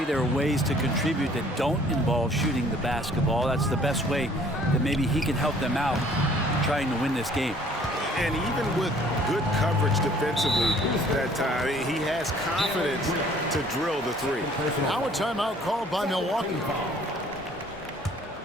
there are ways to contribute that don't involve shooting the basketball. That's the best way that maybe he can help them out trying to win this game. And even with good coverage defensively that time, he has confidence to drill the three. Now a timeout called by Milwaukee.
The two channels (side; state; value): both; normal; correlation 0.56